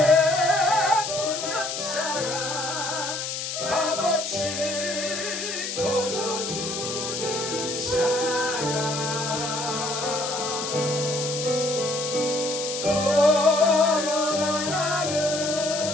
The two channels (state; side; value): noise; left; hiss, 4 dB below the sound